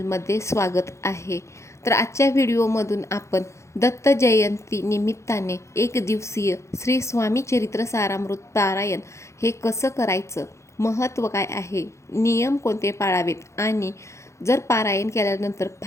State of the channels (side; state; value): right; late; 0.14 ms